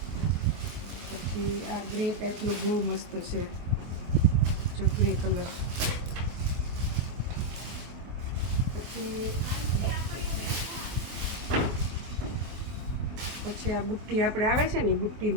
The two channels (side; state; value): left; late; 24 ms